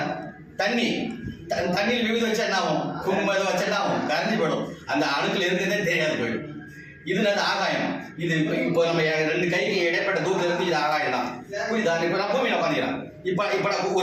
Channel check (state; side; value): identical; both; correlation 1.00